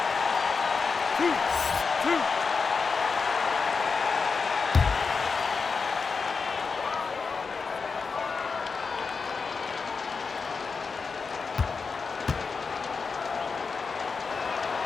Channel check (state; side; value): quieter; right; 5.0 dB